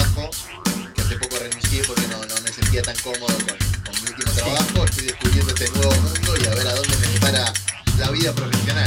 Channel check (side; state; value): both; identical; correlation 1.00